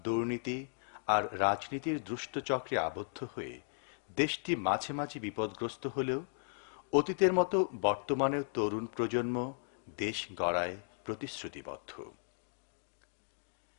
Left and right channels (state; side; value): silent; right; digital silence